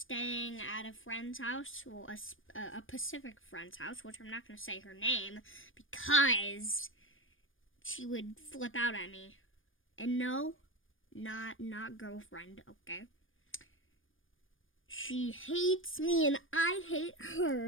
at a friend's house, well, a Pacific friend's house, which I'm not going to say her name because she would flip out at me. And no, not girlfriend, okay? She hates me and I hate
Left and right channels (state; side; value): late; right; 0.58 ms